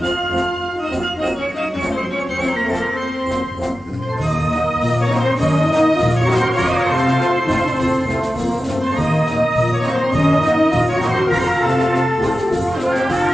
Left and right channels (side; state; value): both; normal; correlation 0.93